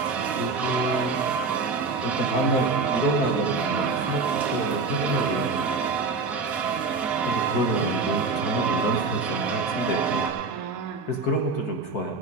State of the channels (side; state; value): left; quieter; 4.0 dB